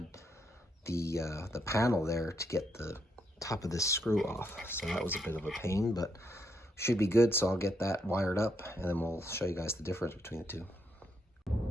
the panel there to get the top of this screw off, so that was a bit of a pain, but should be good. So I'll get that wired up and then we'll show you guys the difference between the two.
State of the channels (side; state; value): both; normal; correlation 0.77